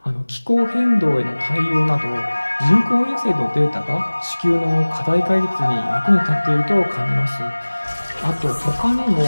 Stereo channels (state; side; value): inverted; both; correlation -1.00